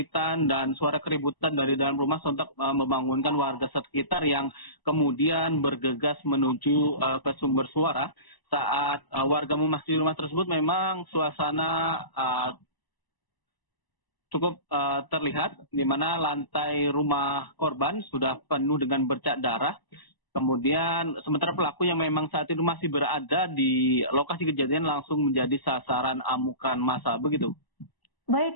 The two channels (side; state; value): right; late; 1.0 ms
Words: dan suara keributan dari dalam rumah sontak membangunkan warga sekitar yang kemudian bergegas menuju ke sumber suara. Saat warga memasuki rumah tersebut, memang suasana cukup terlihat, di mana lantai rumah korban sudah penuh dengan bercak darah. Kemudian sementara pelaku yang memang saat itu masih berada di lokasi kejadian langsung menjadi sasaran amukan massa, begitu. Baik,